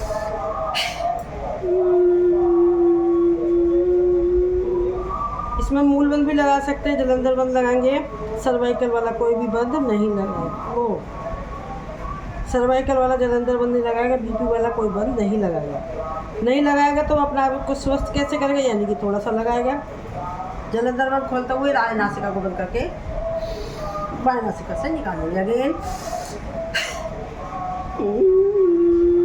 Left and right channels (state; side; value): identical; both; correlation 1.00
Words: इसमें मूल बंद भी लगा सकते हैं, जलंधर बंद लगाएंगे। सर्वाइकल वाला कोई भी बंद नहीं लगाएगा, वो सर्वाइकल वाला जलंधर बंद नहीं लगाएगा, बीपी वाला कोई बंद नहीं लगाएगा। नहीं लगाएगा तो अपने आप को स्वस्थ कैसे करेगा, यानी कि थोड़ा सा लगाएगा। जलंधर बंद खोलते हुए राज नासिका को बंद करके बाएं नासिका से निकालेंगे अगेन।